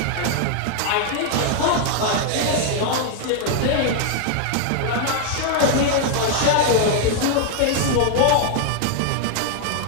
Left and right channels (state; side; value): different; both; correlation 0.00